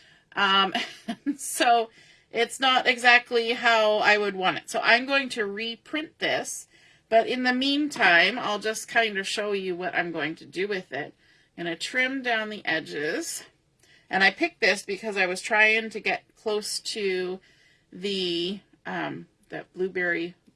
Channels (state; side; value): identical; both; correlation 1.00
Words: So it's not exactly how I would want it. So I'm going to reprint this. But in the meantime, I'll just kind of show you what I'm going to do with it. I'm going to trim down the edges. And I picked this because I was trying to get close to the that blueberry